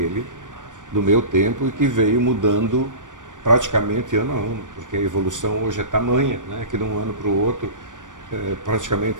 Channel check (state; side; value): late; left; 0.87 ms